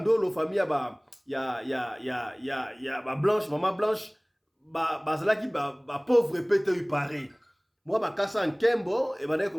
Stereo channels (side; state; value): both; identical; correlation 1.00